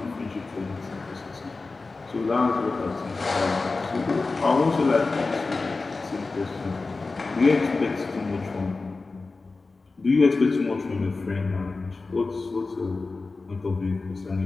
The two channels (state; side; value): quieter; right; 3.8 dB